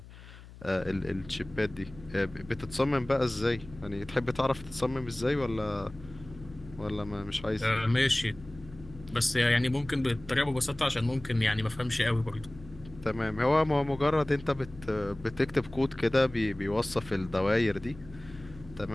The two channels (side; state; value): left; noise; hum, 18 dB below the sound